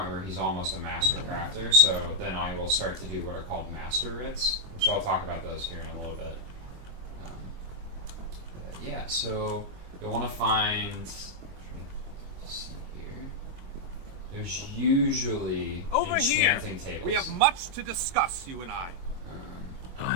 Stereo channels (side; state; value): left; late; 22 ms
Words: where he's almost a master crafter. So then I will start to do what are called master writs, which I'll talk about those here in a little bit. Yeah, so you'll want to find. Let's see here. There's usually Over here, enchanting tables. we have much to discuss, you and I.